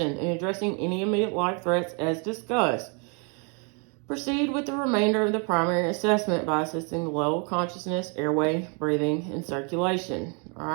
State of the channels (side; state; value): left; quieter; 36.2 dB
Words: and addressing any immediate life threats as discussed, proceed with the remainder of the primary assessment by assessing the level of consciousness, airway, breathing, and circulation. All